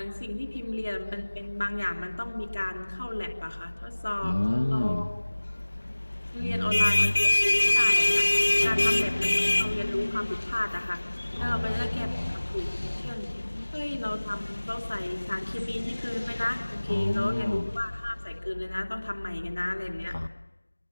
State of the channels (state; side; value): inverted; both; correlation -1.00